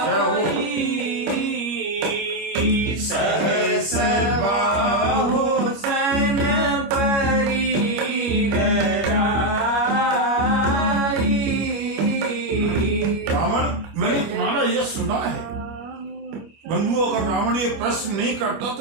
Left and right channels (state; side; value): late; left; 25 ms